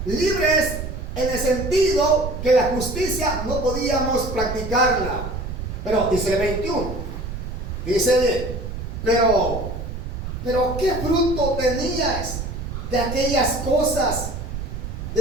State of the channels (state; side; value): noise; right; rumble, 6 dB below the sound